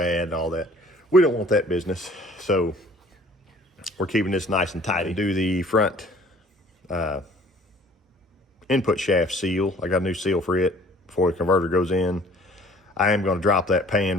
and all that. We don't want that business. So we're keeping this nice and tidy. Do the front input shaft seal. I got a new seal for it before the converter goes in. I am gonna drop that pan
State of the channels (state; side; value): normal; both; correlation 0.53